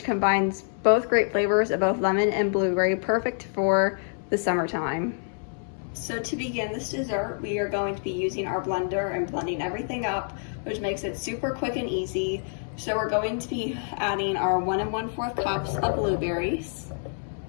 combines both great flavors of both lemon and blueberry, perfect for the summertime. So to begin this dessert, we are going to be using our blender and blending everything up, which makes it super quick and easy. So we're going to be adding our 1 1/4 cups of blueberries,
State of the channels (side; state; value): right; silent; 60 dB below the other